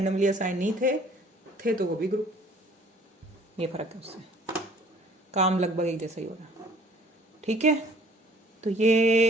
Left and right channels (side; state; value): both; normal; correlation 0.55